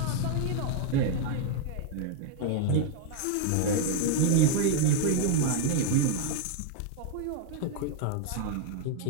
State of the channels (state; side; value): different; both; correlation 0.00